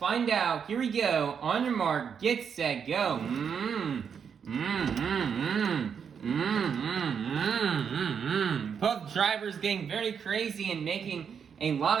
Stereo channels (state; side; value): quieter; left; 7.1 dB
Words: out. Here we go. On your mark, get set, go. Both drivers getting very crazy and making a lot